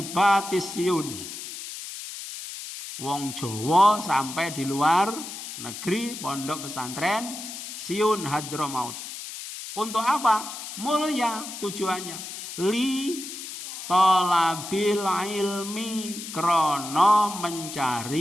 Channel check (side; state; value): left; noise; hiss, 9 dB below the sound